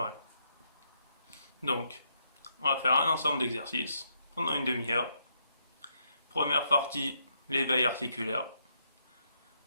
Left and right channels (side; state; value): both; inverted; correlation -0.76